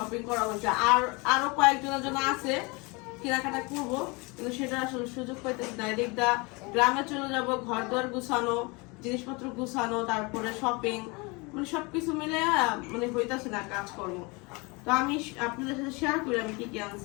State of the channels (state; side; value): quieter; right; 27.4 dB